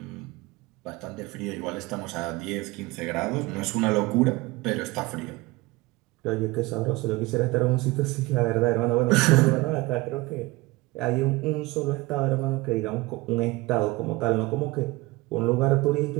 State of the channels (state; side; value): quieter; left; 21.4 dB